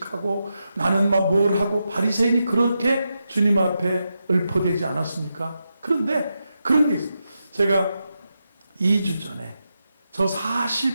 나는 막 뭘 하고, 바리새인이 그렇게 주님 앞에 읊어대지 않았습니까? 그런데 그런 게 있어요. 제가 2주 전에, 저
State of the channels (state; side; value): inverted; both; correlation -0.87